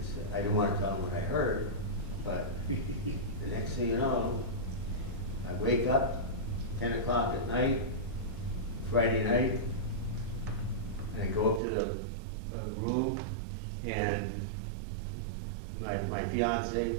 said, I didn't want to tell him what I heard, but the next thing you know, I wake up 10 o'clock at night, Friday night, and I go up to the room, and my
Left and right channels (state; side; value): drops out; left; at 11.6 s